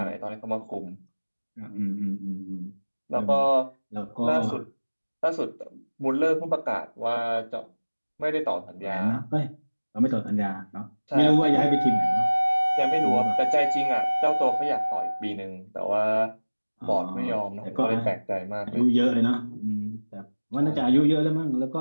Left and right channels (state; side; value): inverted; both; correlation -1.00